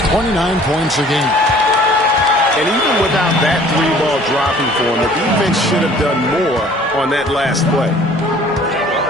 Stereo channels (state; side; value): normal; both; correlation 0.52